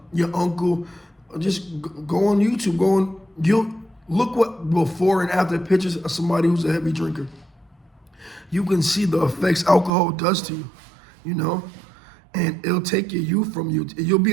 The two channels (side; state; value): left; drops out; at 9.9 s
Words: Your uncle, just go on YouTube, you'll look what before and after pictures of somebody who's a heavy drinker. You can see the effects alcohol does to you, and it'll take your youth from you. You'll